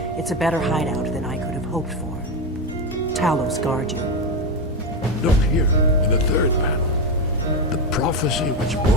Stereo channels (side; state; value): both; normal; correlation 0.13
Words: It's a better hideout than I could have hoped for. Tjalus guard you. Look here, in the third panel. The prophecy which